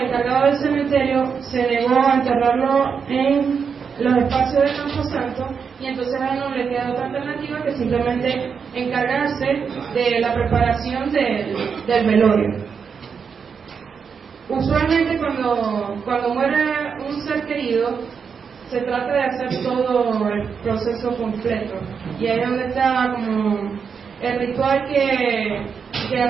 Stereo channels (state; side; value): quieter; left; 6.2 dB